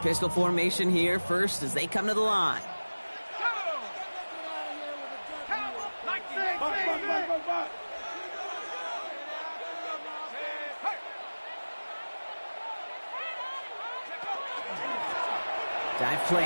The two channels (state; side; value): inverted; both; correlation -1.00